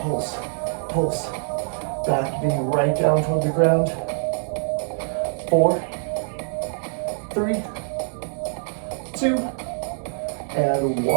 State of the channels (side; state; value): left; silent; digital silence